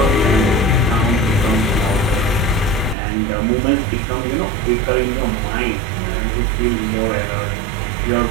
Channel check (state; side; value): drops out; left; at 3.0 s